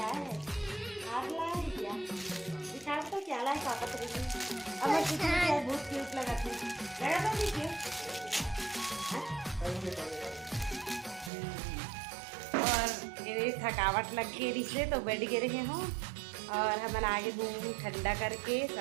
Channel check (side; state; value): left; drops out; at 11.3 s